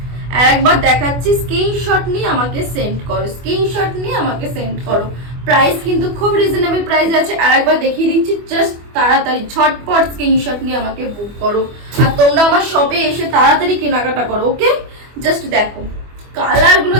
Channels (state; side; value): late; left; 24 ms